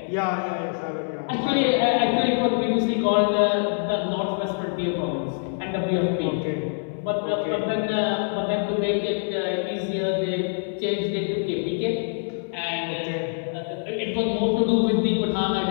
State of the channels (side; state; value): right; silent; 62 dB below the other